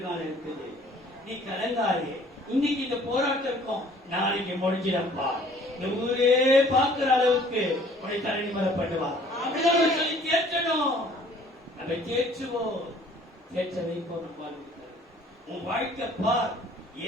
இருக்குது. நீ கலங்காதே. இன்னைக்கு இந்த போராட்டம் இருக்கும், நாளைக்கு முடிஞ்சிடப்பா. இந்த ஊரே பார்க்கிற அளவுக்கு உன்னை தரணி மரப்படுவா. அப்படிதான் சொல்லி தேற்றணும். நம்ம தேற்றுவோம், தேற்ற வைப்போம். நம்ம உன் வாழ்க்கை பார்.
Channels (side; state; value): both; normal; correlation 0.55